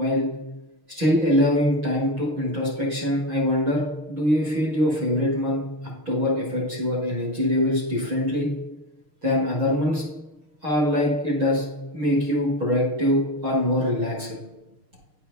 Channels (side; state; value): left; late; 6.5 ms